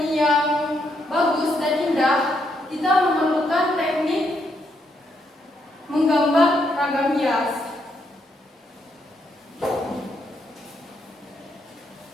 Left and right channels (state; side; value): normal; both; correlation 0.76